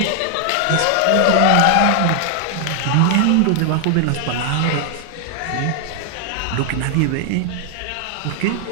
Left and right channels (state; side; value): different; both; correlation 0.00